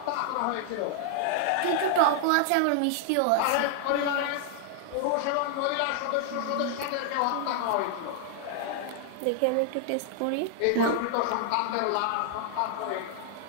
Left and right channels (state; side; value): different; both; correlation 0.00